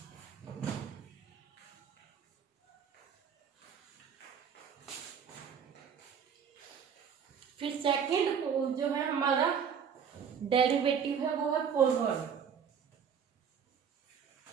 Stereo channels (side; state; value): left; quieter; 7.3 dB